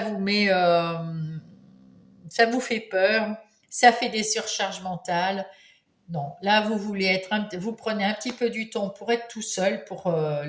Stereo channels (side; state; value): both; identical; correlation 1.00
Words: met, ça vous fait peur, ça fait des surcharges mentales. Non, là vous voulez vous prenez un petit peu du temps pour être tout seul, pour